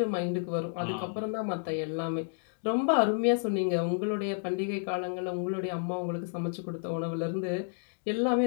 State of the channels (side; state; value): right; silent; digital silence